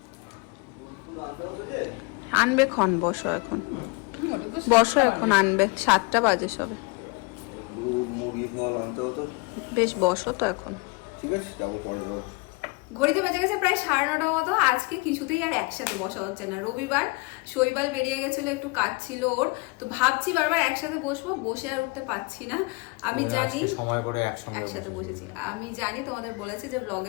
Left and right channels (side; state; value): right; quieter; 28.0 dB